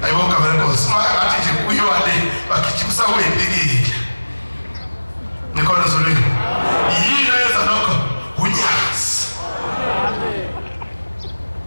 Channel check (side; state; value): both; inverted; correlation -1.00